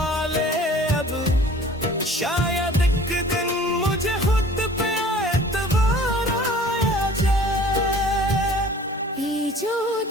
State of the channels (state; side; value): normal; both; correlation 0.48